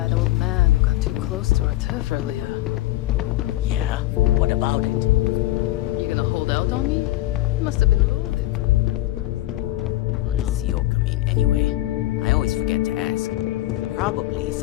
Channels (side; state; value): right; quieter; 16.1 dB